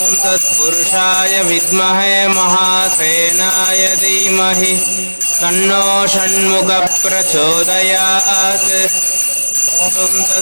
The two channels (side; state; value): both; inverted; correlation -1.00